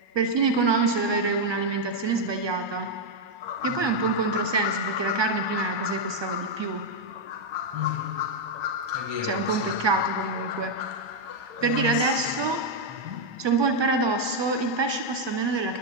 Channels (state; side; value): late; left; 1.2 ms